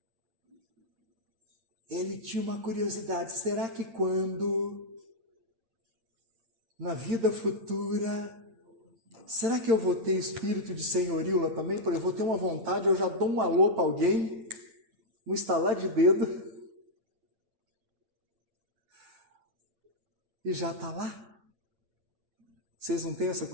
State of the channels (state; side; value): late; left; 8.8 ms